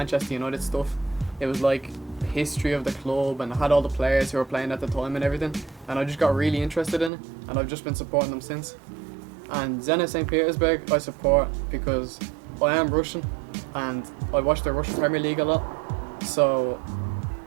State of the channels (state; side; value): drops out; left; at 7.1 s